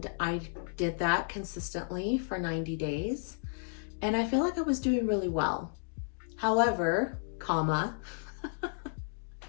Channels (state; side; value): silent; right; digital silence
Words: I did that consistently for 90 days, and I feel like I was doing really well. However,